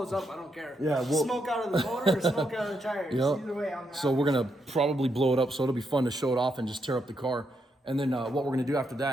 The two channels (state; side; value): normal; both; correlation 0.80